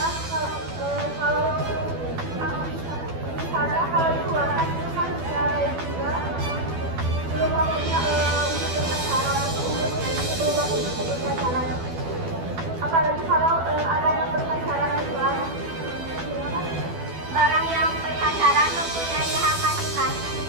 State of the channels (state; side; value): late; left; 12 ms